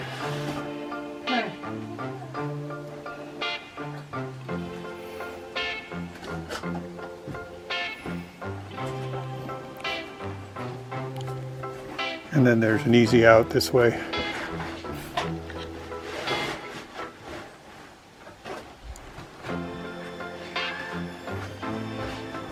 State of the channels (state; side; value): identical; both; correlation 1.00